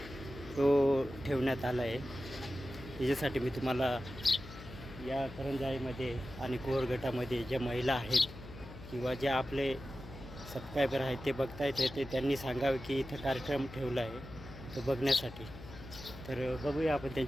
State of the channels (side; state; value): left; noise; hum, 14 dB below the sound